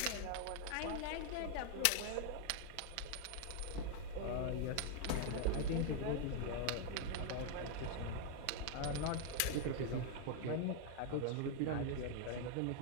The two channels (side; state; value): both; different; correlation 0.00